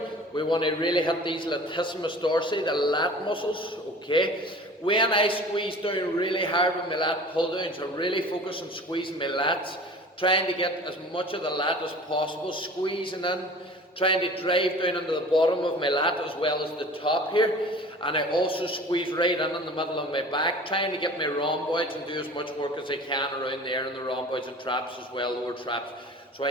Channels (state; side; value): normal; both; correlation 0.42